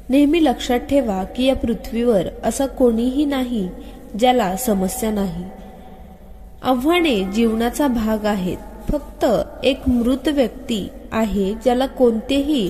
नेहमी लक्षात ठेवा की या पृथ्वीवर असं कोणीही नाही ज्याला समस्या नाही। आव्हाने जीवनाचा भाग आहेत। फक्त एक मृत व्यक्ती आहे ज्याला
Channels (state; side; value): identical; both; correlation 1.00